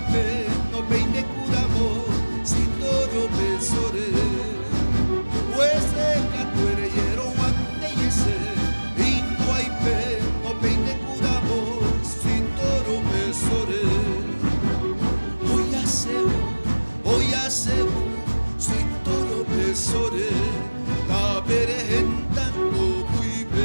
no peine curamo si toro besore. Hueseca tuereyero guante y ese Ingo aipe no peine curamo si toro besore. Hoy hace si toro besore. Ta berehenta no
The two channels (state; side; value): inverted; both; correlation -1.00